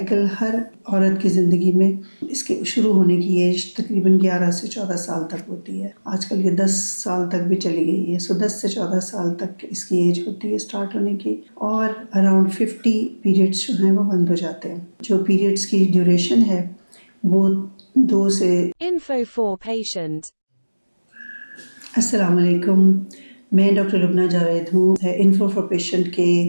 ہر عورت کی زندگی میں اس کے شروع ہونے کی ایج تقریباً 11 سے 14 سال تک ہوتی ہے. آج کل یہ 10 سال تک بھی چلی گئی ہے. 10 سے 14 سال تک اس کی ایج ہوتی ہے اسٹارٹ ہونے کی، اور اراؤنڈ 50 پیریڈس جو ہیں وہ بند ہو جاتے ہیں. جو پیریڈس کی ڈیوریشن ہے وہ 2 سے Info for patient. السلام علیکم، میں ڈاکٹر لبنہ جاوید ہوں. انفو فار پیشنٹ کے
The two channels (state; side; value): inverted; both; correlation -1.00